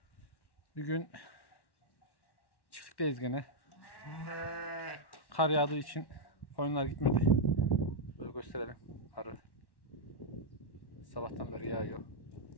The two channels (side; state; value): right; late; 1.1 ms